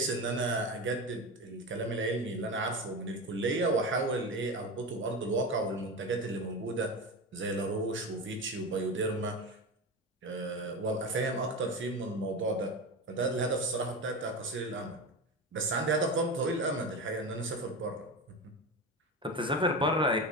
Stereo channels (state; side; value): normal; both; correlation 0.23